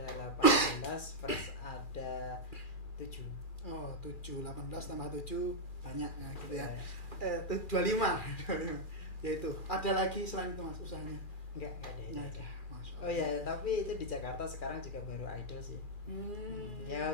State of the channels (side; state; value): right; late; 2.4 ms